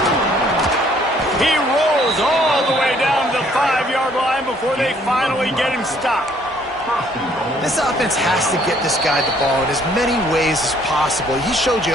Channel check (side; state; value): both; normal; correlation 0.63